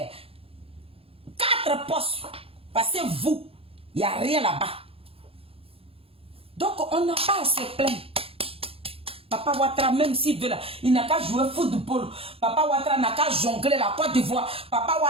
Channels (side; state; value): left; late; 0.27 ms